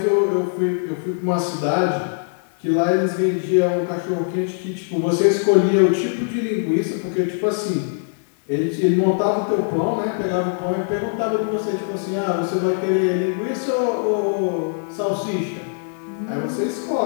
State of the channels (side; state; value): right; silent; 65 dB below the other